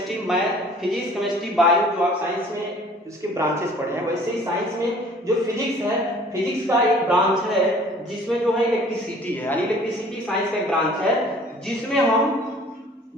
math, physics chemistry, bio, जो आप साइंस में उसके ब्रांचेस पढ़े हैं, वैसे ही साइंस में जो फिजिक्स है, फिजिक्स का एक ब्रांच है जिसमें जो है इलेक्ट्रिसिटी है। यानी इलेक्ट्रिसिटी साइंस का एक ब्रांच है जिसमें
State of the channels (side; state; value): both; normal; correlation 0.52